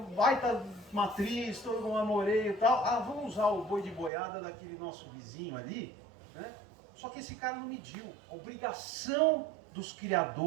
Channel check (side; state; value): left; drops out; at 4.1 s